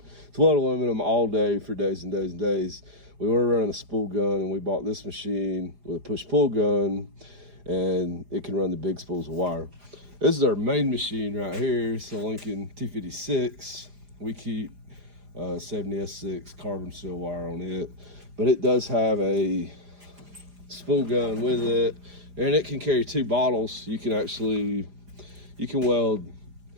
weld aluminum all day for days and days and days. We were running a spool gun, and we bought this machine with a push-pull gun, and it can run the big spools of wire. This is our main machine right here. It's a Lincoln 256. We keep 70S6 carbon steel wire on it, but it does have a spool gun with it, and it can carry 2 bottles. You can be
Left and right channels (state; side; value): late; left; 4.9 ms